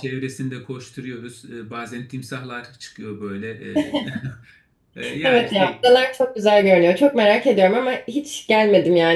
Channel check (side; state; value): both; identical; correlation 1.00